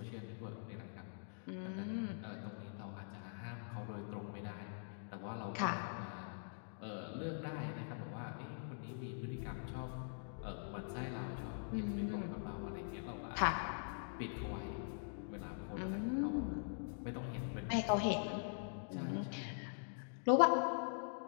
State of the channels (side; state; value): right; silent; digital silence